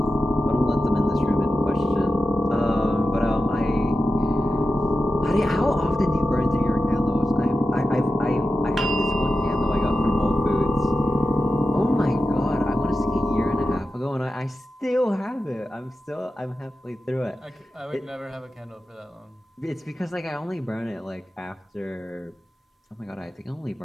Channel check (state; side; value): normal; both; correlation 0.91